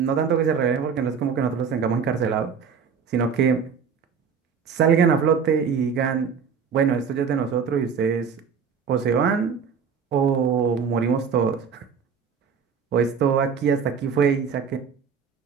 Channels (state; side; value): quieter; left; 6.4 dB